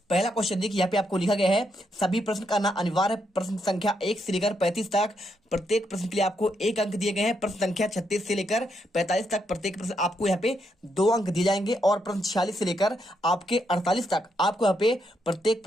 पहला क्वेश्चन देखिए यहाँ पे आपको लिखा गया है, सभी प्रश्न करना अनिवार्य। प्रश्न संख्या 1 से लेकर 35 तक प्रत्येक प्रश्न के लिए आपको 1 अंक दिए गए हैं। प्रश्न संख्या 36 से लेकर 45 तक प्रत्येक प्रश्न आपको यहाँ पे 2 अंक दिए जाएंगे। और प्रश्न 46 से लेकर आपके 48 तक आपको यहाँ पे प्रत्येक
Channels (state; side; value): normal; both; correlation 0.79